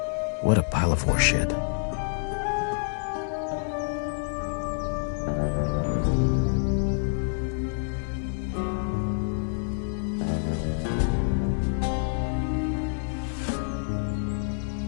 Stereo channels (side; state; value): right; silent; digital silence